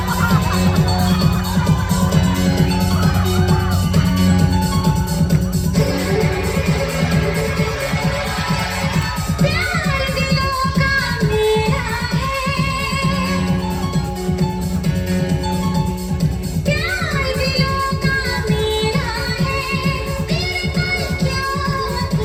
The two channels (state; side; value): identical; both; correlation 1.00